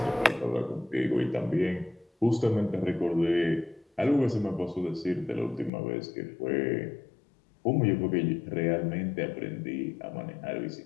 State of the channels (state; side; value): drops out; right; at 5.7 s